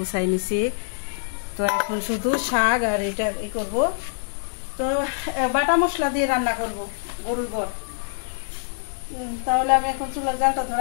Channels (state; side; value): silent; right; digital silence